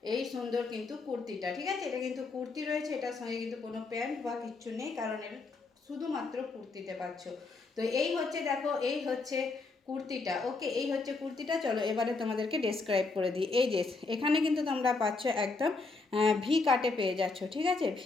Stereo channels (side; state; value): right; quieter; 3.9 dB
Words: এই সুন্দর কিন্তু কুর্তিটা। ঠিক আছে, এটা কিন্তু কুর্তি রয়েছে, এটার সঙ্গে কিন্তু কোনো প্যান্ট বা কিচ্ছু নেই, কারণ এটা শুধুমাত্র কুর্তিতে পাচ্ছ। তো এই হচ্ছে দেখো, এই হচ্ছে কুর্তিটা। ওকে, এই হচ্ছে কুর্তিটা। চলো এবারে তোমাদেরকে ডেসক্রাইব করে দিই। এই যে এখানে কিন্তু তোমরা পাচ্ছ একদম ভি কাটে পেয়ে যাচ্ছ। ঠিক আছে,